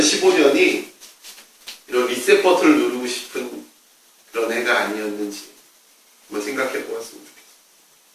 이런 리셋 버튼을 누르고 싶은 그런 해가 아니었는지 한번 생각해 보았으면 좋겠습니다.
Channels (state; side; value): identical; both; correlation 1.00